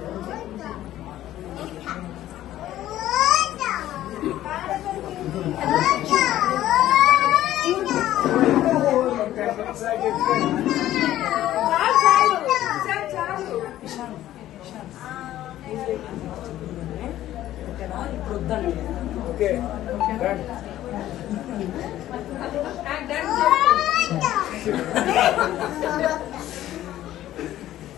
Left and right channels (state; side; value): quieter; right; 13.4 dB